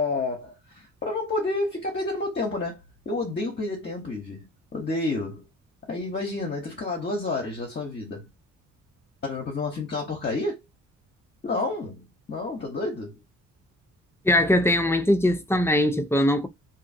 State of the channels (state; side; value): normal; both; correlation 0.50